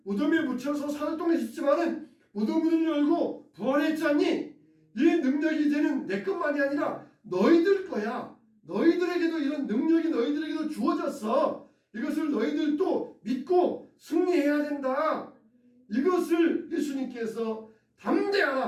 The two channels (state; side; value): identical; both; correlation 1.00